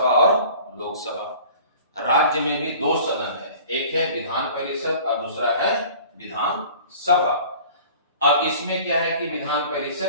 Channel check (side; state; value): both; inverted; correlation -0.46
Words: और लोकसभा, राज्य में भी 2 सदन है, एक है विधान परिषद और दूसरा है विधान सभा। अब इसमें क्या है कि विधान